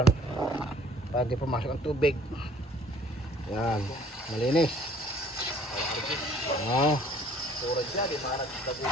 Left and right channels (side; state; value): both; normal; correlation 0.55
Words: para hindi pumasok ang tubig. Yan, malinis.